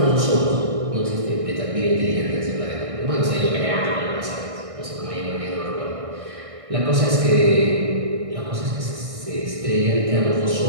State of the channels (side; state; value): left; late; 1.6 ms